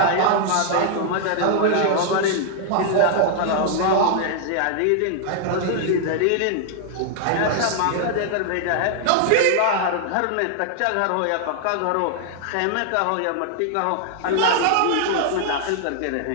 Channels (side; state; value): both; different; correlation 0.00